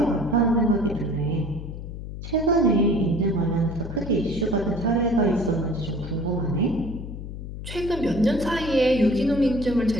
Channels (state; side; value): noise; left; hum, 9 dB below the sound